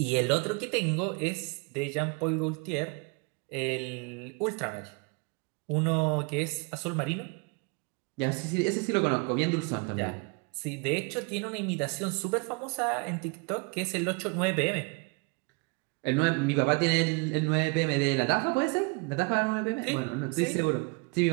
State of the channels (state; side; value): quieter; left; 31.1 dB